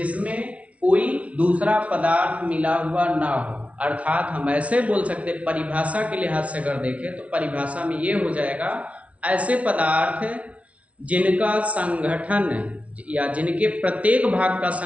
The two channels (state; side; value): late; left; 0.064 ms